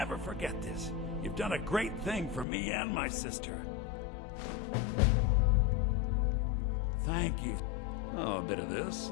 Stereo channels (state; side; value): drops out; right; at 2.5 s